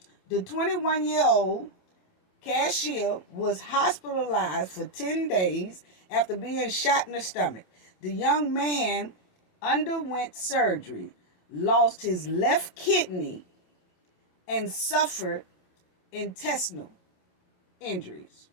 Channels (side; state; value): right; late; 27 ms